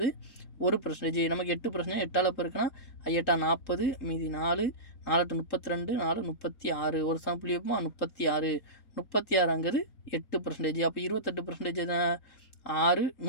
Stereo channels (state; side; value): late; right; 3.7 ms